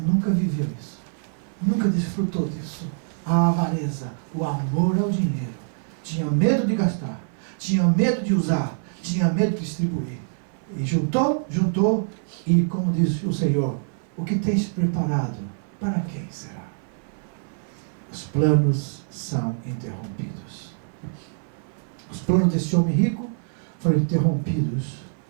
viveu isso, nunca desfrutou disso. A avareza, o amor ao dinheiro, tinha medo de gastar, tinha medo de usar, tinha medo de distribuir. E juntou, e como diz o Senhor, o que tens preparado, para quem será? Os planos são interrompidos. Os planos desse homem rico foram interrompidos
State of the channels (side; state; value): left; silent; 56 dB below the other